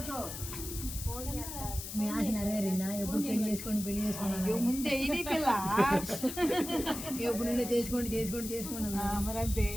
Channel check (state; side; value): noise; left; hiss, 8 dB below the sound